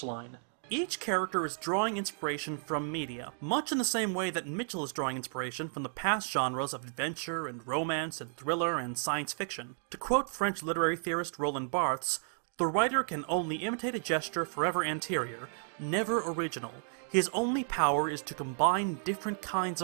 Each character is drawing inspiration from media, much in the same way that Mitchell is drawing inspiration from the past genres of adventure and romance and thriller and science fiction. To quote French literary theorist Roland Barthes, "The writer can only imitate a gesture forever anterior, never original. His only power is to combine different kinds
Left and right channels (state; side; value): silent; left; 56 dB below the other